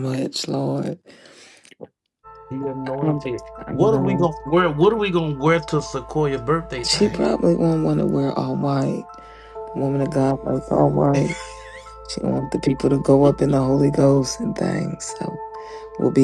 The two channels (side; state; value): both; identical; correlation 1.00